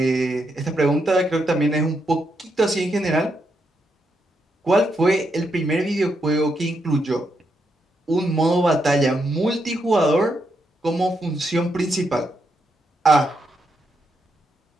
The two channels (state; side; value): normal; both; correlation 0.81